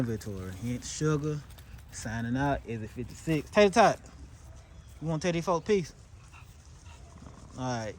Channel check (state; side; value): identical; both; correlation 1.00